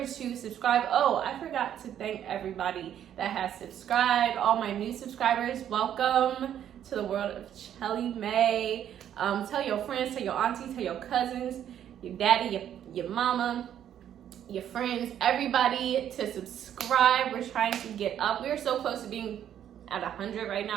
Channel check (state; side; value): quieter; left; 10.2 dB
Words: to subscribe. Oh, I forgot to thank everybody that has subscribed. All my new subscribers, welcome to the world of Chelly May. Tell your friends, tell your aunties, tell your cousins, your daddy, your mama, your friends, everybody to subscribe. We're trying to get up. We're so close to being at 100 right